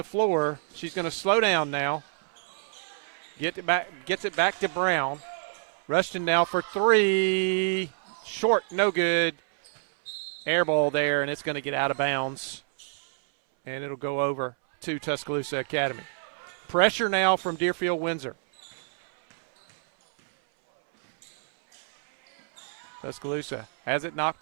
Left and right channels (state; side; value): silent; left; 60 dB below the other